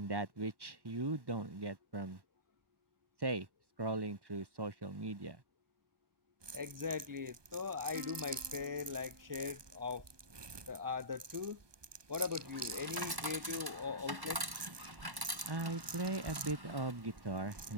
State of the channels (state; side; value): late; left; 1.2 ms